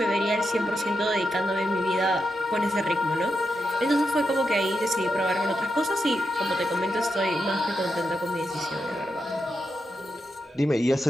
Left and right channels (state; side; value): normal; both; correlation 0.86